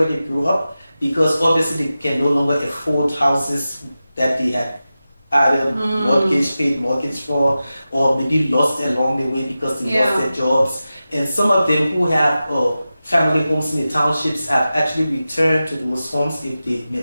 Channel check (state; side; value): inverted; both; correlation -0.94